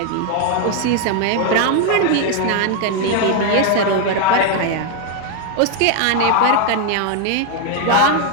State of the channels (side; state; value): both; different; correlation 0.01